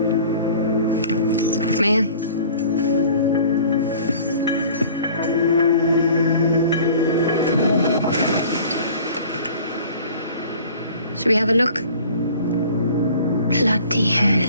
May I? Should we have a look? Bloody hell.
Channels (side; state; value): both; inverted; correlation -0.47